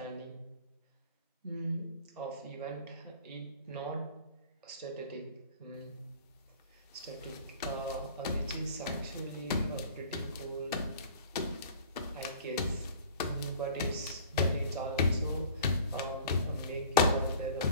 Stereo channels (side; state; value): both; inverted; correlation -0.46